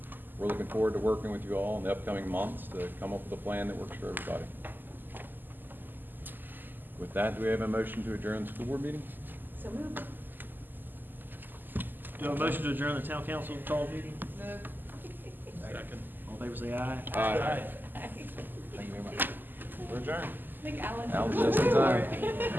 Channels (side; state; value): left; late; 0.090 ms